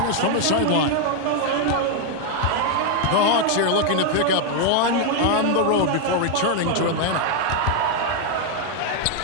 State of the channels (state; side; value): different; both; correlation 0.01